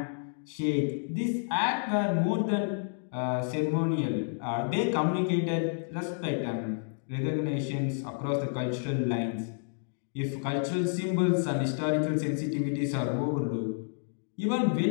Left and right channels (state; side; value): silent; right; digital silence